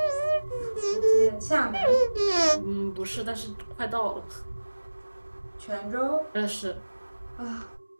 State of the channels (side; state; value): both; inverted; correlation -1.00